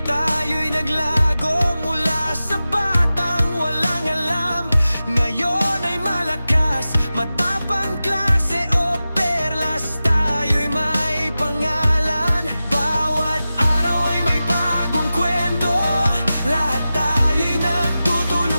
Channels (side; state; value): both; inverted; correlation -0.94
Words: tayo'y naglago mula sa batang walang alam. Ngayon ay malakas, matapang klase O Perlas, tayo'y may pangalan. Bawat araw ay may bagong kwento, lahat tayo'y